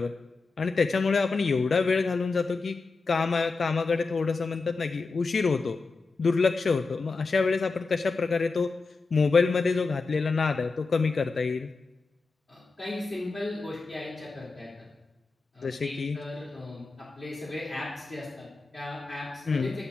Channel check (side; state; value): right; quieter; 4.1 dB